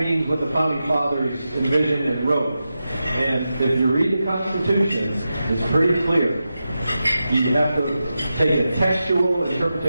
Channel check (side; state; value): both; inverted; correlation -0.91